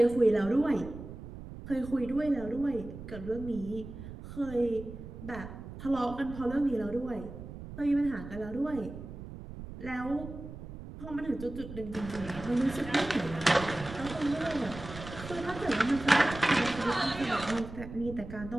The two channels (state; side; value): noise; right; rumble, 12 dB below the sound